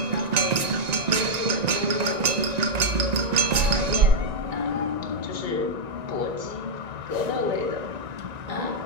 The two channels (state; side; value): late; left; 1.9 ms